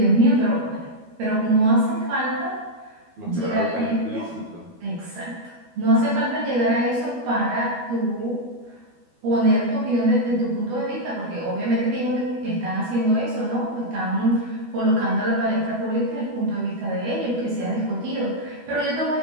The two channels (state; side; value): late; left; 12 ms